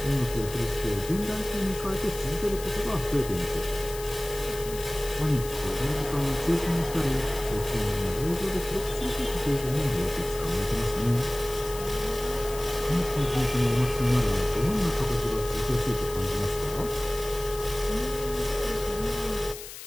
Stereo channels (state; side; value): noise; left; hiss, 12 dB below the sound